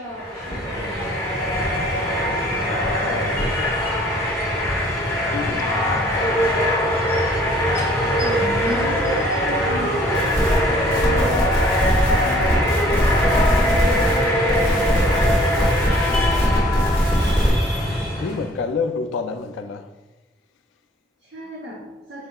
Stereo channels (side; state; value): both; normal; correlation 0.56